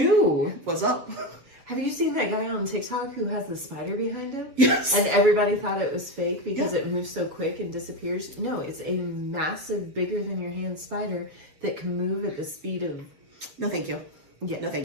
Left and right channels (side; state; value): left; late; 7.3 ms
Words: What's up? Have you seen that guy on TikTok who has the spider behind him? Yes. And everybody thought it was fake because it moves so quick and disappears. No, it's a massive, bigger than your hand spider that can move at the speed of... No, thank you. Yeah. No,